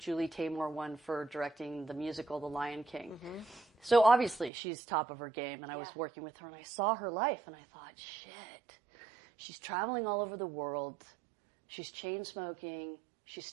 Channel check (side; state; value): left; drops out; at 4.5 s